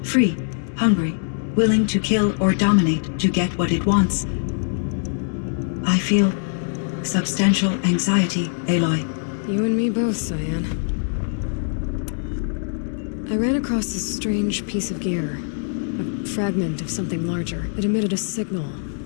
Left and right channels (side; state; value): right; silent; digital silence